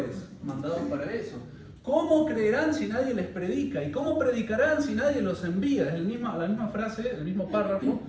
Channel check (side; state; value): both; identical; correlation 1.00